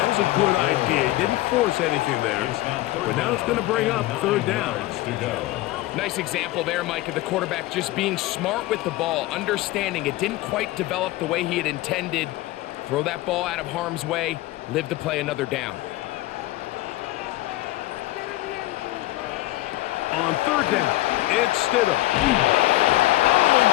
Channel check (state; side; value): quieter; right; 17.3 dB